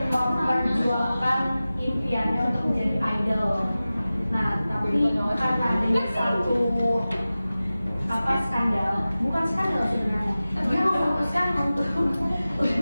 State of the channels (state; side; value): inverted; both; correlation -0.96